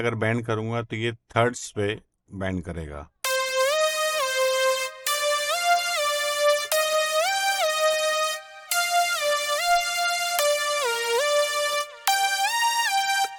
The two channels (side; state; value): both; identical; correlation 1.00